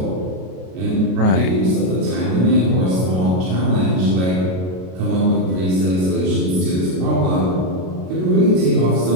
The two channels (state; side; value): late; left; 33 ms